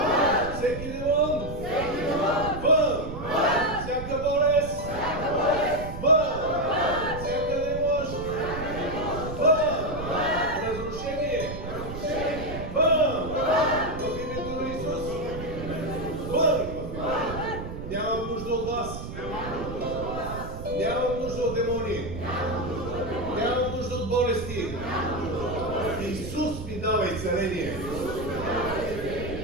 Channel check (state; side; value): noise; right; rumble, 9 dB below the sound